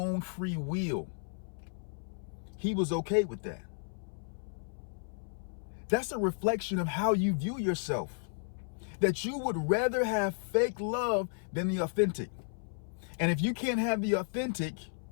free will. He was okay with that. That's a reflection of how you view yourself. That you would rather have fake love than the authentic. And if you can't have the authentic,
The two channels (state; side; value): silent; right; 55 dB below the other